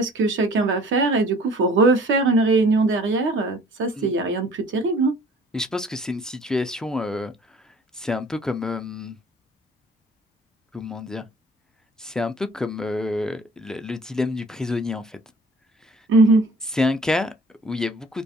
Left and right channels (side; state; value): both; normal; correlation 0.51